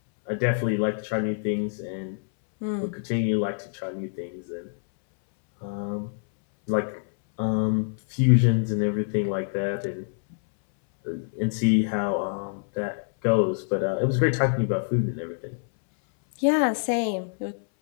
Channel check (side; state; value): right; silent; 61 dB below the other